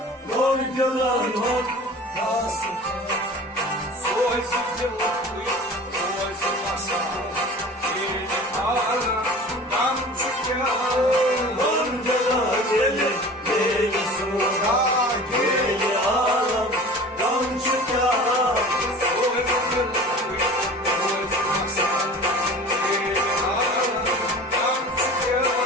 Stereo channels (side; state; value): both; normal; correlation 0.40